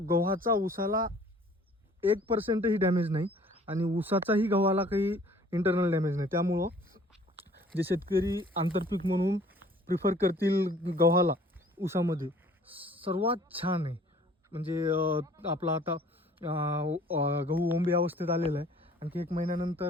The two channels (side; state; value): both; normal; correlation 0.54